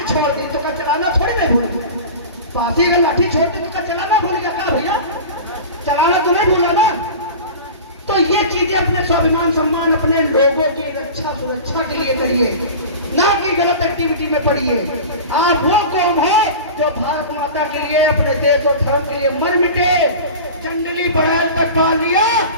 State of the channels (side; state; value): both; inverted; correlation -0.33